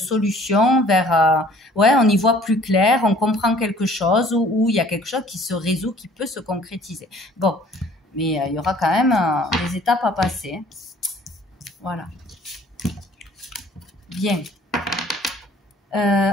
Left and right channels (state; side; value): normal; both; correlation 0.54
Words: vers... ouais, on y voit plus clair, on comprend quelque chose, ou il y a quelque chose qui se résout, qui peut se concrétiser. Bon, mais il y aura quand même des étapes à passer. Hein. Voilà. Bien.